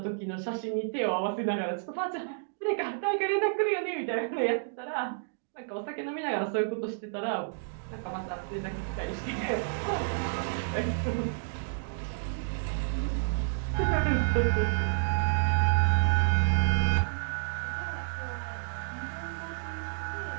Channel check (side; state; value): left; silent; digital silence